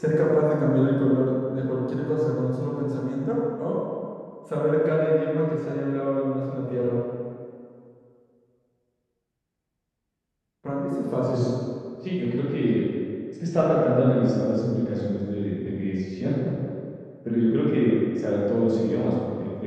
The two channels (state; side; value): identical; both; correlation 1.00